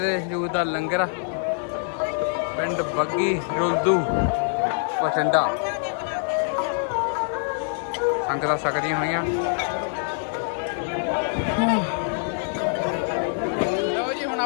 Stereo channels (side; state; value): right; silent; 62 dB below the other